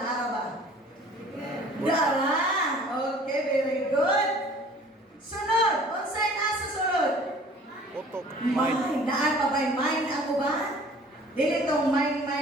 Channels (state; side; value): normal; both; correlation 0.50